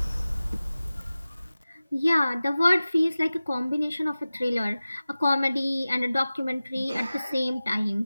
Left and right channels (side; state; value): both; inverted; correlation -0.97